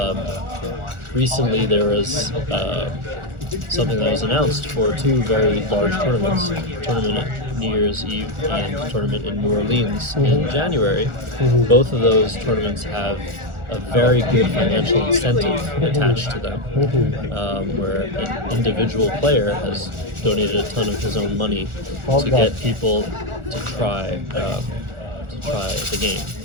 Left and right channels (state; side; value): late; left; 1.4 ms